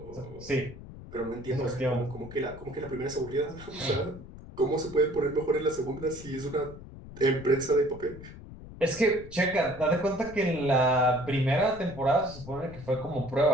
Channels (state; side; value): noise; left; rumble, 15 dB below the sound